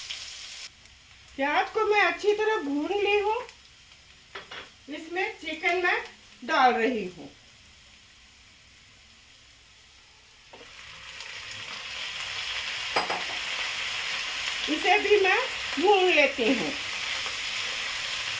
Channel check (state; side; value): identical; both; correlation 1.00